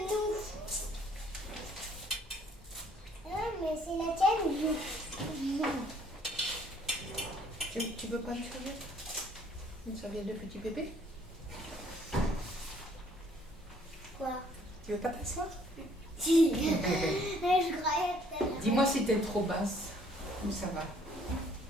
nous. Mais c'est la tienne ou non? Tu veux pas une serviette? Une serviette de petit bébé? Quoi? Tu veux pas t'asseoir? Si. Je croyais que Dis-moi si t'es trop basse. Ou ça va?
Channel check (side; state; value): both; normal; correlation 0.61